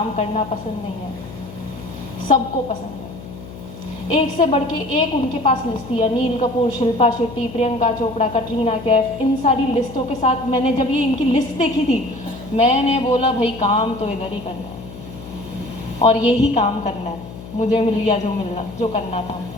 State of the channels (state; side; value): noise; left; hum, 14 dB below the sound